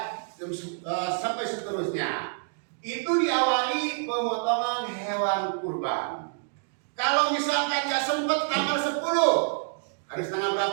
sampai seterusnya. Itu diawali pemotongan hewan kurban. Kalau misalkan nggak sempat tanggal 10, harus tanggal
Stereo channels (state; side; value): silent; left; digital silence